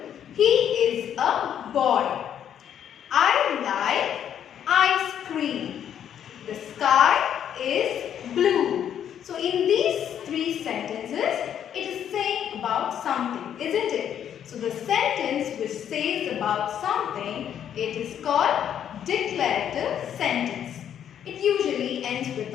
he is a boy. I like ice cream. The sky is blue. So in these three sentences, it is saying about something, isn't it? So the sentence which says about something, it is called declarative sentence. It usually ends with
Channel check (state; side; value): quieter; right; 9.5 dB